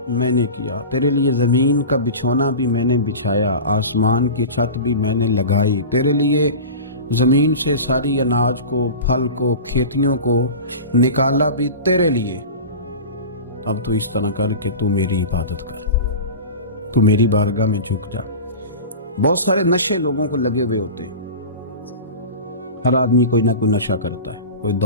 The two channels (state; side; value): inverted; both; correlation -0.31